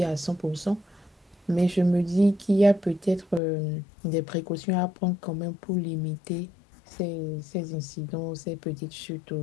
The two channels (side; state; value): right; drops out; at 3.4 s